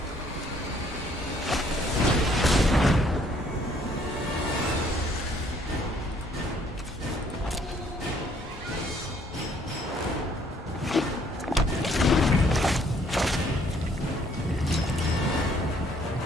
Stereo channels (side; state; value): both; normal; correlation 0.64